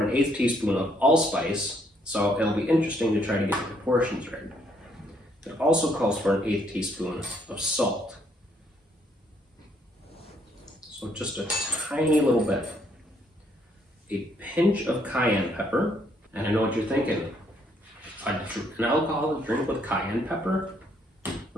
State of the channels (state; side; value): normal; both; correlation 0.70